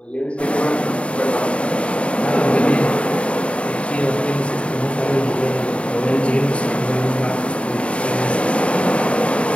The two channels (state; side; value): late; right; 0.061 ms